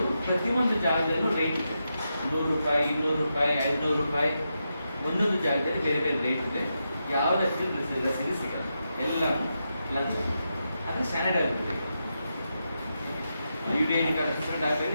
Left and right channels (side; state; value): both; inverted; correlation -0.86